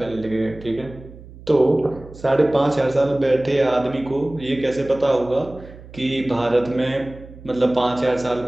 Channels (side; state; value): right; noise; hum, 18 dB below the sound